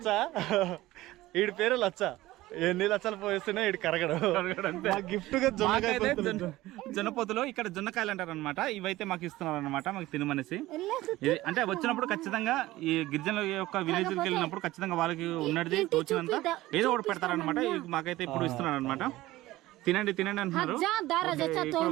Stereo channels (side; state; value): left; quieter; 17.2 dB